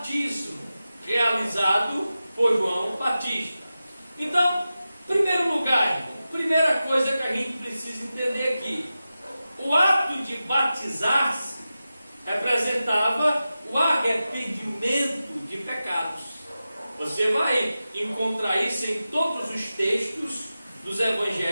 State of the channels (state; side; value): inverted; both; correlation -0.93